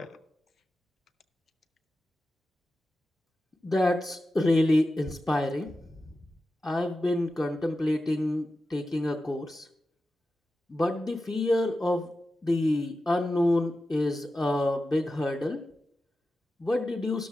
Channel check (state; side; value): normal; both; correlation 0.92